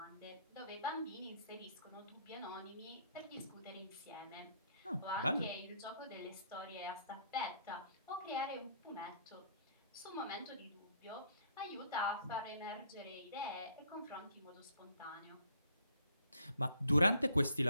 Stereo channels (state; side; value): inverted; both; correlation -0.63